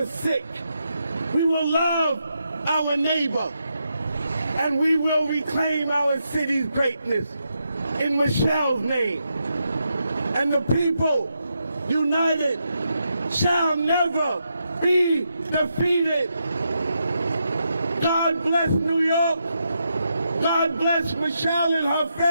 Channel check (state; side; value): inverted; both; correlation -0.82